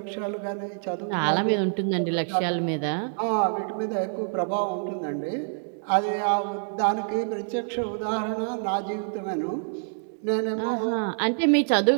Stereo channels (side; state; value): left; silent; digital silence